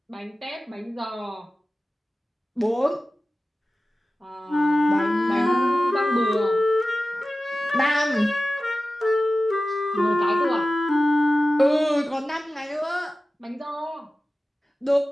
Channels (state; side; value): normal; both; correlation 0.95